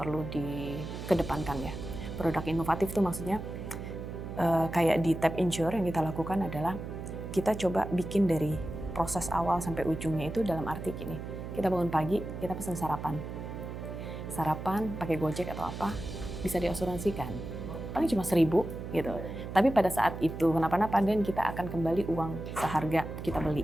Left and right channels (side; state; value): right; noise; hum, 8 dB below the sound